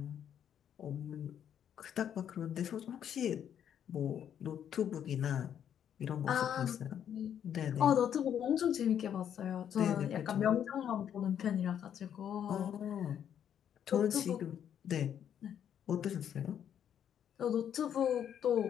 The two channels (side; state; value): right; quieter; 9.3 dB